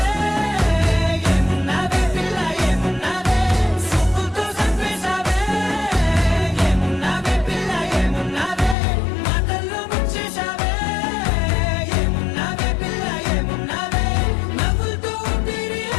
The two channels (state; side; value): drops out; right; at 8.8 s